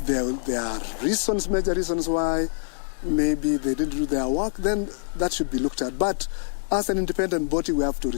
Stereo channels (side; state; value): right; silent; digital silence